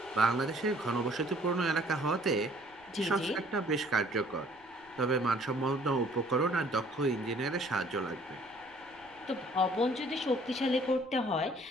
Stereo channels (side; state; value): left; noise; rumble, 29 dB below the sound